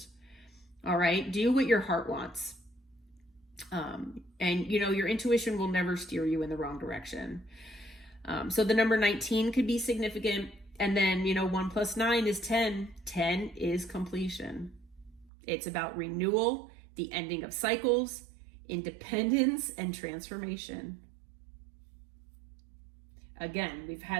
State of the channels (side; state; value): left; drops out; at 15.3 s